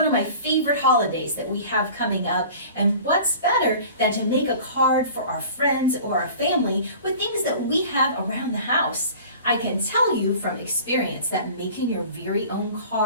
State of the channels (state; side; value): inverted; both; correlation -0.42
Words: of my favorite holidays that we have coming up, and what's better than to make a card for our friends or our family with things that we have around the house. I can tell you from experience that making your very own